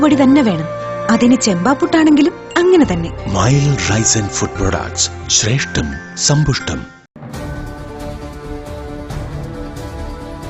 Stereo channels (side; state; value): both; identical; correlation 1.00